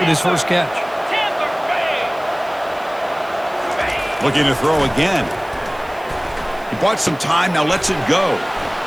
his first catch. Looking to throw again. He bought some time, now lets it go.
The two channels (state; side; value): noise; right; hiss, 26 dB below the sound